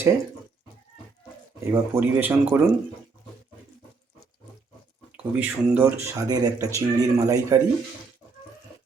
এবার পরিবেশন করুন। খুবই সুন্দর স্বাদের একটা চিংড়ির মালাইকারি।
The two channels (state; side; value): quieter; left; 4.4 dB